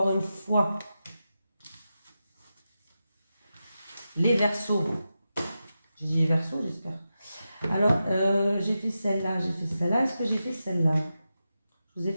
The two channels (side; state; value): both; inverted; correlation -0.90